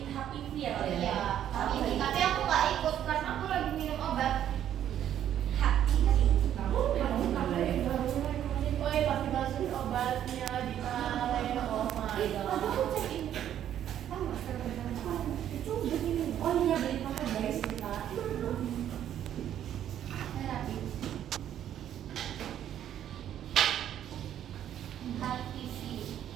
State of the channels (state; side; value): quieter; left; 10.7 dB